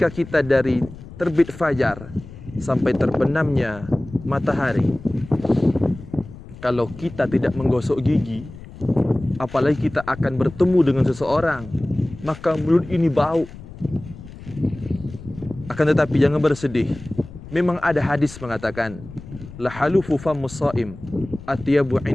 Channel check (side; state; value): left; noise; rumble, 16 dB below the sound